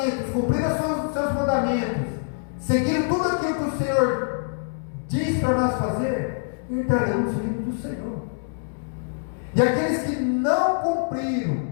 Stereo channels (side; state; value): right; silent; digital silence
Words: cumpriram os seus mandamentos, seguindo tudo aquilo que o Senhor diz para nós fazer, entrarão no reino do Senhor. E aqueles que não cumpriram